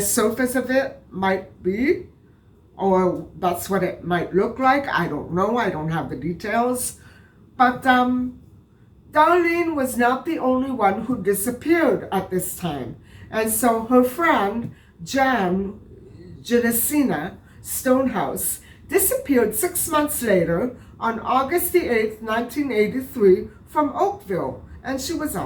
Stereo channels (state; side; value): identical; both; correlation 1.00